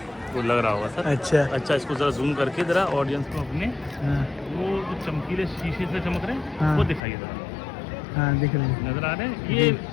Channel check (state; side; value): drops out; right; at 7.0 s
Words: वो लग रहा होगा सर। अच्छा इसको जरा जूम करके जरा ऑडियंस को अपने हाँ वो जो चमकीले शीशे से चमक रहे हैं हाँ। वो दिखाइए जरा। हाँ, दिख रहे हैं। नजर आ रहे हैं? ये